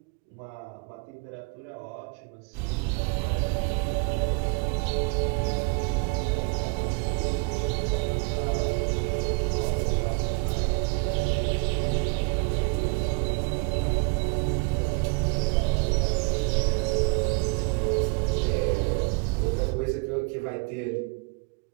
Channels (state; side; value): quieter; left; 31.1 dB